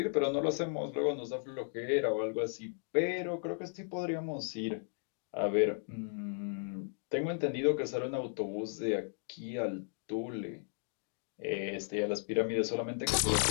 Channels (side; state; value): right; silent; digital silence